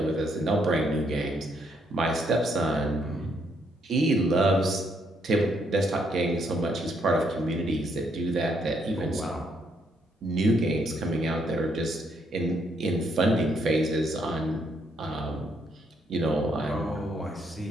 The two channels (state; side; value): normal; both; correlation 0.73